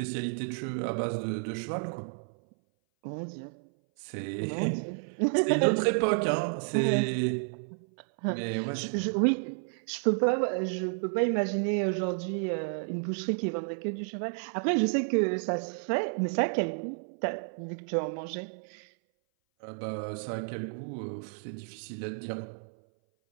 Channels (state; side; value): silent; left; 57 dB below the other